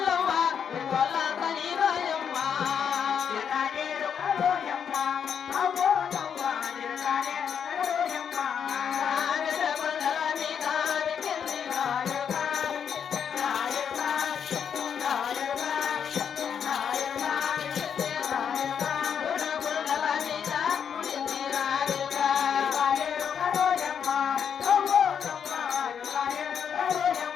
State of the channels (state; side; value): quieter; right; 7.7 dB